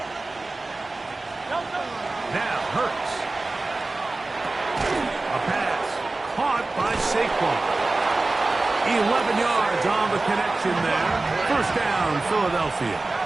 Now Hurts. A pass caught by Saquon. 11 yards on the connection there. 1st down, Philadelphia.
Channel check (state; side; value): quieter; left; 3.2 dB